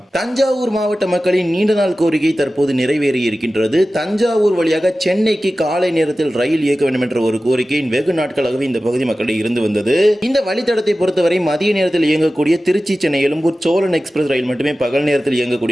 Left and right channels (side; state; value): both; normal; correlation 0.95